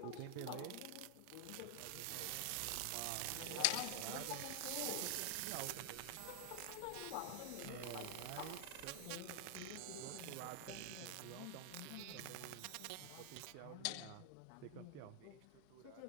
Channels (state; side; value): different; both; correlation 0.00